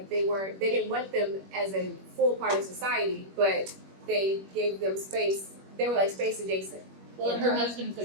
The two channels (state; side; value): late; left; 21 ms